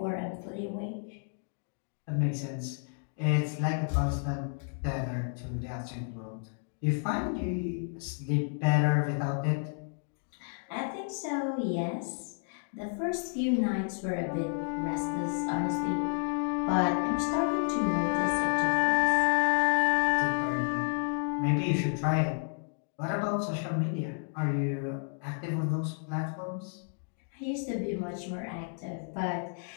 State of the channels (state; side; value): silent; right; 57 dB below the other